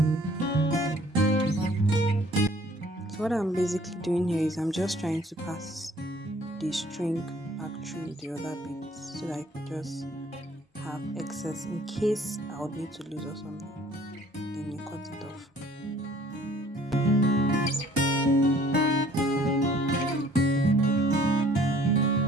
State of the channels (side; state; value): both; normal; correlation 0.56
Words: What I'm basically doing here is I'm just trying to pass the string back through the other beads so that I can just have excess in case I would need to lose or something. Then you cut it off.